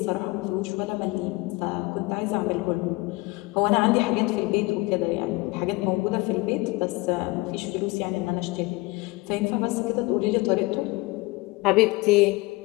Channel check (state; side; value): quieter; right; 23.2 dB